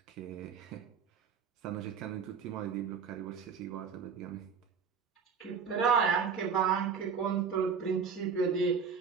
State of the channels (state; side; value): quieter; left; 6.2 dB